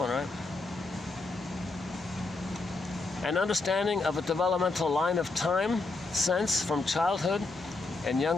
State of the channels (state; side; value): quieter; right; 3.4 dB